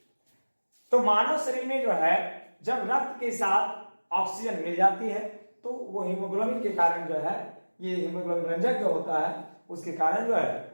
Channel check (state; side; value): inverted; both; correlation -1.00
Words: तो मानव शरीर में जो है जब रक्त के साथ ऑक्सीजन मिल जाती है तो वो हीमोग्लोबिन के कारण जो है, ये हीमोग्लोबिन रंजक जो होता है उसके कारण जो है